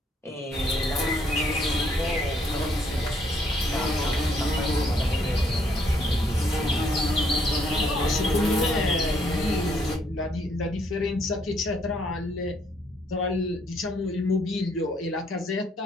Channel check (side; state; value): both; normal; correlation 0.69